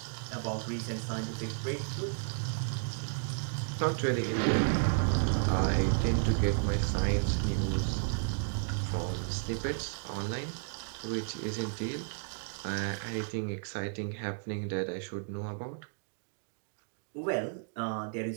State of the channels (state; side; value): silent; left; digital silence